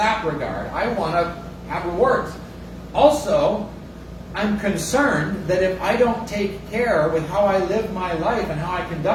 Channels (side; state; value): both; identical; correlation 1.00